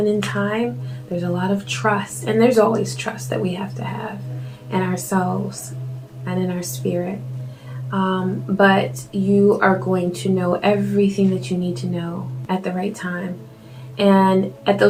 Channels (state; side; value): identical; both; correlation 1.00